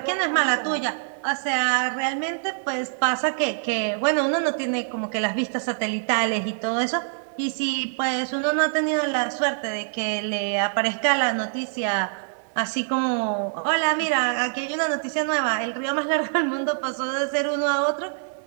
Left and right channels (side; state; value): left; silent; digital silence